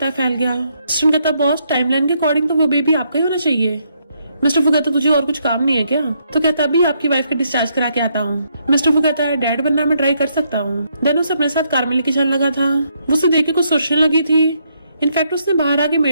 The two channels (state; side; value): inverted; both; correlation -0.75